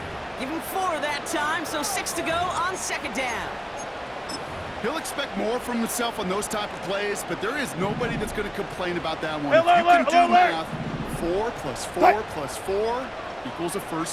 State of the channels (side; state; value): both; identical; correlation 1.00